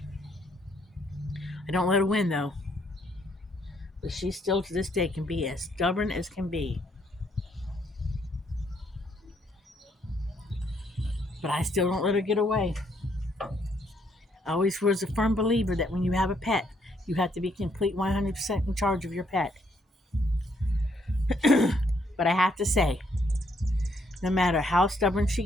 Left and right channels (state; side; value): normal; both; correlation 0.72